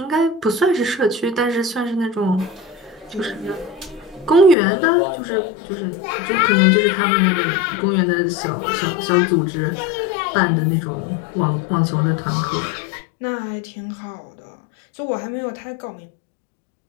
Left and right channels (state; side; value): drops out; right; at 4.5 s